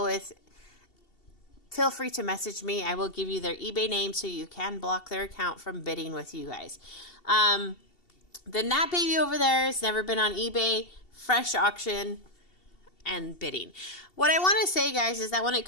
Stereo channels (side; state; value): right; late; 2.7 ms